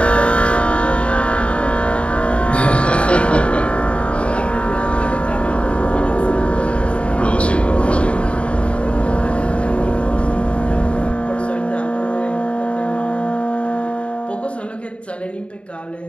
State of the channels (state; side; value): late; right; 0.060 ms